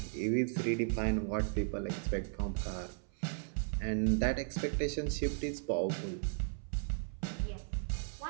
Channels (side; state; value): left; silent; 54 dB below the other